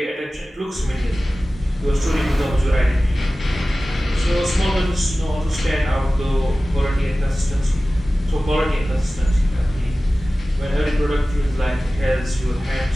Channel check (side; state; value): both; normal; correlation 0.96